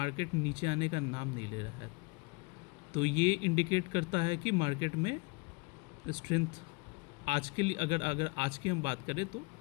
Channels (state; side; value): quieter; right; 28.3 dB